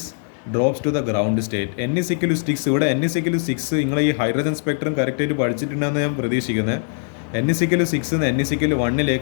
drops to the ground state? n=6. ഇവിടെ n=6 നിങ്ങൾ ഈ ഹൈഡ്രജൻ സ്പെക്ട്രം കറക്റ്റായിട്ട് പഠിച്ചിട്ടുണ്ടെന്ന് ഞാൻ പ്രതീക്ഷിക്കുന്നത്. n=6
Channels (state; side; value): silent; right; digital silence